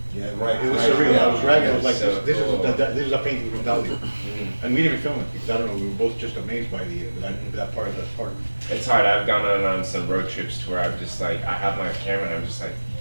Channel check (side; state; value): both; inverted; correlation -1.00